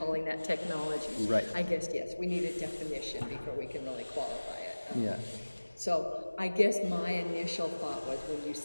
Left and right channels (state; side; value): inverted; both; correlation -1.00